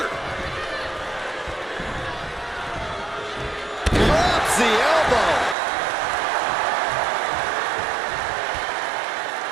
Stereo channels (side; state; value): left; drops out; at 5.6 s